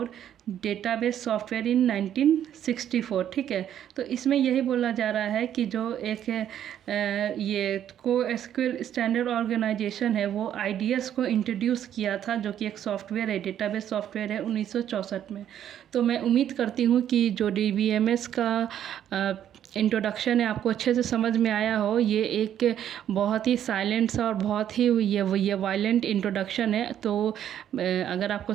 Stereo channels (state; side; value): quieter; left; 10.3 dB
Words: database software in 1964, ठीक है। तो इसमें यही बोला जा रहा है कि जो एक ये को एसक्यूएल स्टैंडर्ड ऑर्गेनाइजेशन है वो आईडीएस को इंट्रोड्यूस किया था, जो कि एक सॉफ्टवेयर है, डेटाबेस सॉफ्टवेयर है 1964 में। तो मैं उम्मीद करती हूँ कि जो डीबीएमएस का इंट्रोडक्शन है आपको अच्छे से समझ में आया हो। ये एक बहुत ही साइलेंट सा और बहुत ही ये वायलेंट इंट्रोडक्शन है। तो अगर आपको